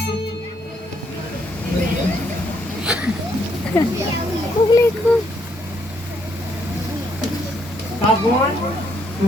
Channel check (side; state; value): both; normal; correlation 0.72